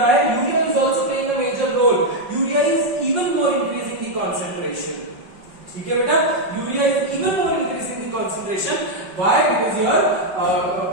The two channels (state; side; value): late; left; 5.5 ms